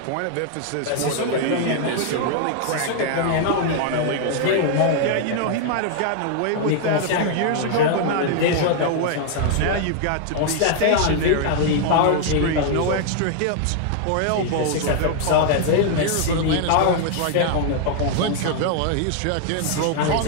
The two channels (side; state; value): both; different; correlation 0.00